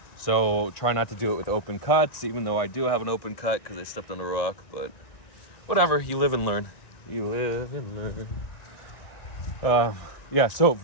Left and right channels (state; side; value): late; right; 1.9 ms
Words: So try not to do it with open cuts, even though I do have an open cut because I stepped on a rock, but whatever, you live and learn. You live and learn. Yeah, so